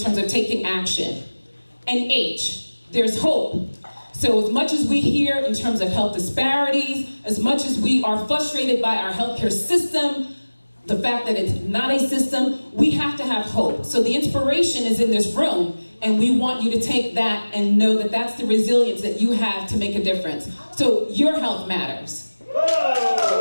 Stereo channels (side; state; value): both; inverted; correlation -1.00